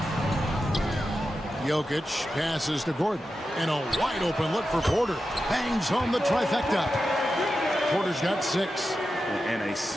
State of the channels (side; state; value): both; normal; correlation 0.91